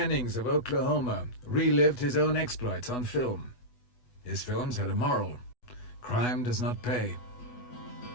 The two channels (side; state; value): right; late; 8.1 ms